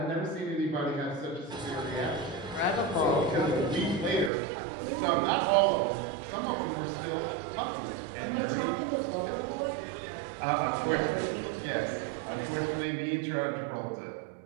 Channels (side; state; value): left; drops out; at 4.3 s